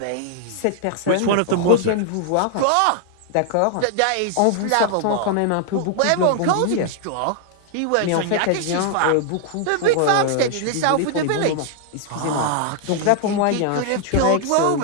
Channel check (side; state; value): both; different; correlation 0.00